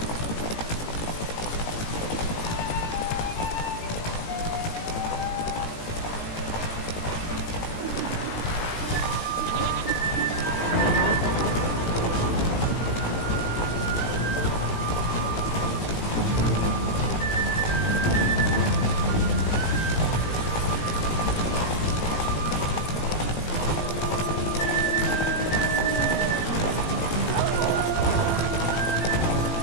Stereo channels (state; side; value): late; right; 18 ms